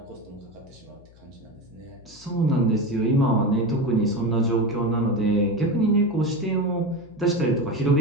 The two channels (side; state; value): left; noise; hum, 25 dB below the sound